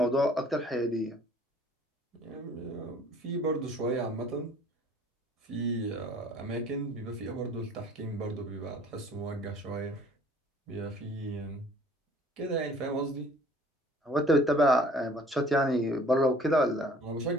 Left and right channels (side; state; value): both; normal; correlation 0.53